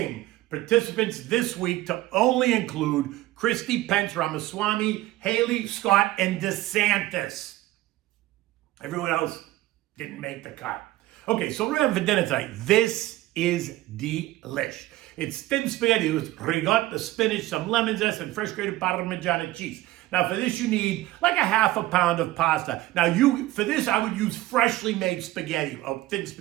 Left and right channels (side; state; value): left; quieter; 16.9 dB